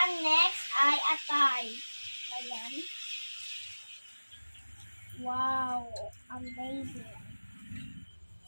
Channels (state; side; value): inverted; both; correlation -1.00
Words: next ay atay. Ayan. Wow! Amazing!